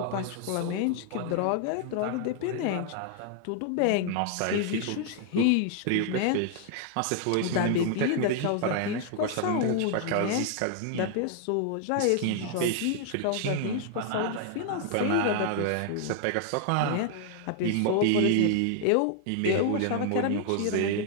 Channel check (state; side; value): different; both; correlation 0.00